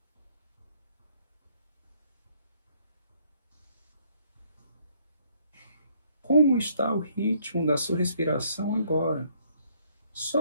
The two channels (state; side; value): inverted; both; correlation -0.66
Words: Como está o ritmo da sua respiração agora?